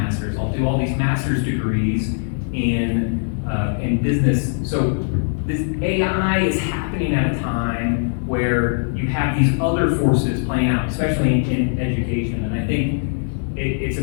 I'll do all these master's degrees in business. So this AI is happening at a time where you have these other forces playing out, especially in education. And I think it's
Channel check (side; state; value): right; silent; 65 dB below the other